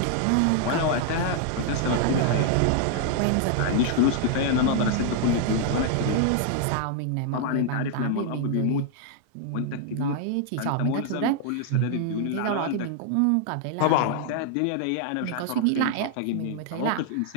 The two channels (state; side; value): different; both; correlation 0.00